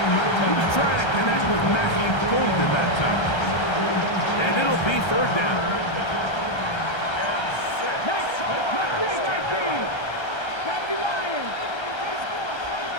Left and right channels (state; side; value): late; right; 1.3 ms